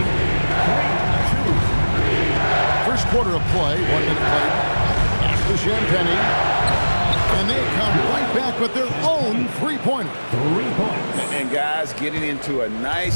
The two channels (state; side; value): inverted; both; correlation -1.00